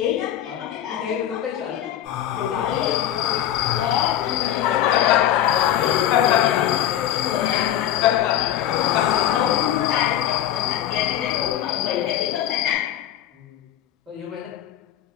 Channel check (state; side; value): quieter; right; 11.5 dB